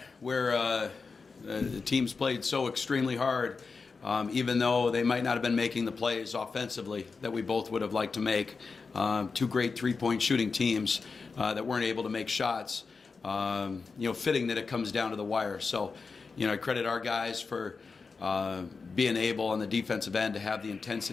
where the teams played so extremely hard, even though they might not have been making the plays offensively that we both would have liked to make. Two great three-point shooting teams that weren't able to make shots. Fitting that it comes down to the wire. So, I credit our guys for being able on the defensive end to have the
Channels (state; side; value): quieter; right; 4.7 dB